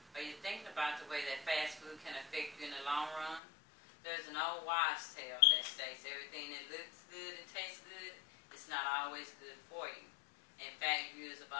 are you thinking about the way that fast food can affect you in the long run? There's an old wives' tale that states everything that looks good and tastes good is not always good for you. In fact, years of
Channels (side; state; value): right; drops out; at 3.4 s